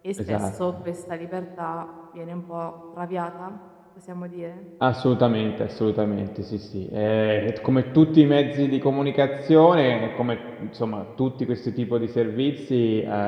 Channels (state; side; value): identical; both; correlation 1.00